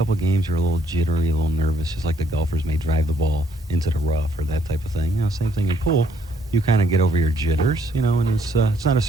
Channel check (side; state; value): both; normal; correlation 0.67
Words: of games you're a little jittery, a little nervous, just like the golfers may drive the ball into the rough or that type of thing. You know, same thing in pool. You kind of get over your jitters, you know, and it's not a